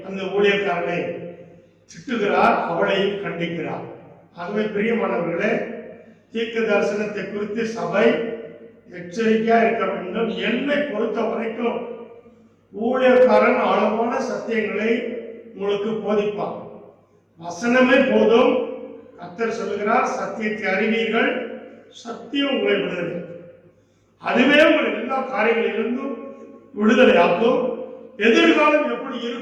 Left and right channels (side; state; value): both; identical; correlation 1.00